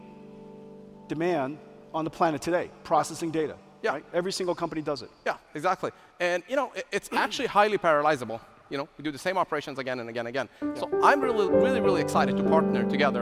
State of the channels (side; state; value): both; identical; correlation 1.00